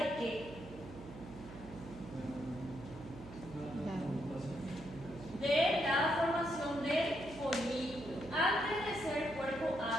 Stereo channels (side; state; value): right; noise; hum, 14 dB below the sound